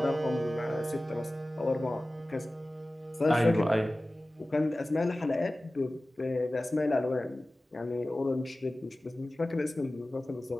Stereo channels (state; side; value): normal; both; correlation 0.97